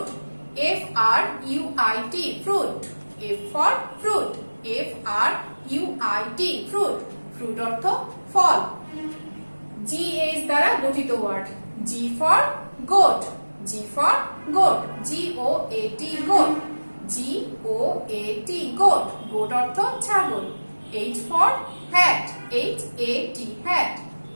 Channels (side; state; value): both; inverted; correlation -1.00